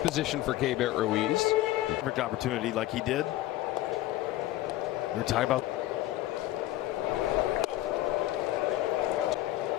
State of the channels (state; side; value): quieter; right; 15.6 dB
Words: for Keibert Ruiz. Perfect opportunity like he did. We're talking about